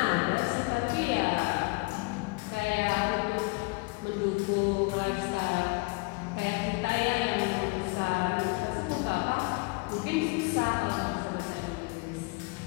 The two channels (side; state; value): right; quieter; 28.2 dB